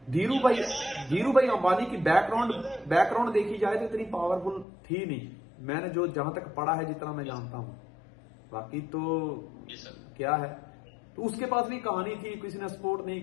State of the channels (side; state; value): right; drops out; at 4.7 s